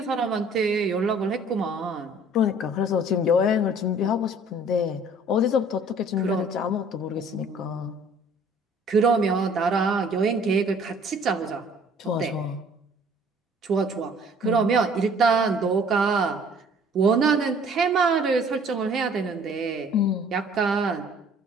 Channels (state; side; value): normal; both; correlation 0.55